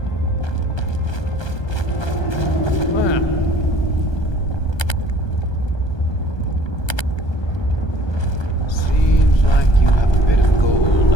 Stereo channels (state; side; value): late; right; 1.2 ms